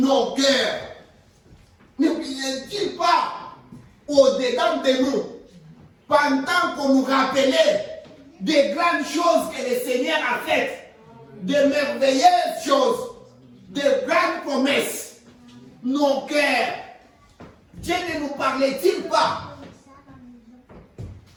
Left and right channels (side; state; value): both; identical; correlation 1.00